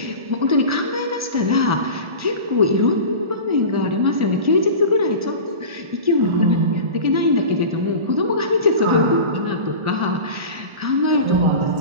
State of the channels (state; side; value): late; left; 1.4 ms